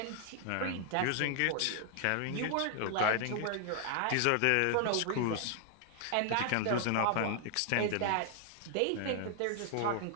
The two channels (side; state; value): both; different; correlation 0.00